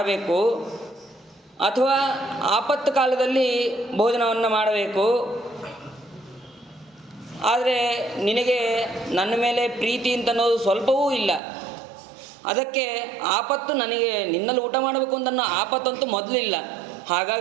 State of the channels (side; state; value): left; drops out; at 11.4 s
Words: ಅಥವಾ ಆಪತ್ತು ಕಾಲದಲ್ಲಿ ಭೋಜನವನ್ನು ಮಾಡಬೇಕು. ಆದರೆ ನಿನಗೆ ನನ್ನ ಮೇಲೆ ಪ್ರೀತಿ ಅಂತ ಅನ್ನೋದು ಸ್ವಲ್ಪವೂ ಇಲ್ಲ. ಅದಕ್ಕೆ ಆಪತ್ತು ನನಗೆ ನಿನ್ನಲ್ಲಿ ಊಟ ಮಾಡಬೇಕು ಅಂತ ಅನ್ನೋ ಆಪತ್ತಂತೂ ಮೊದಲಿಲ್ಲ,